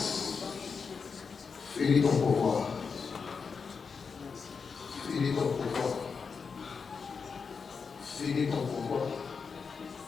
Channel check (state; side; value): quieter; right; 5.5 dB